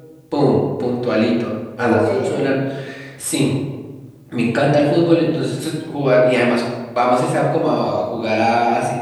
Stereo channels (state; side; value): identical; both; correlation 1.00